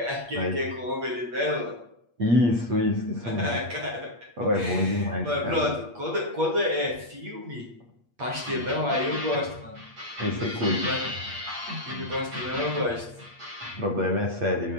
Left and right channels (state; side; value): late; left; 8.4 ms